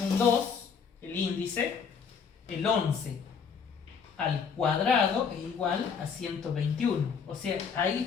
2, el índice, el 11 al cuadrado es igual a 121. O sea,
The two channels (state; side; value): quieter; right; 6.2 dB